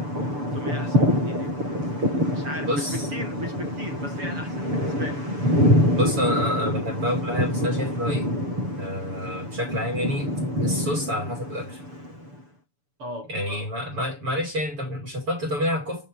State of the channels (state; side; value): late; left; 6.9 ms